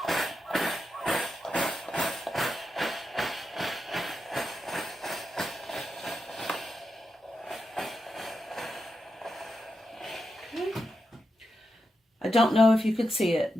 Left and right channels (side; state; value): both; normal; correlation 0.87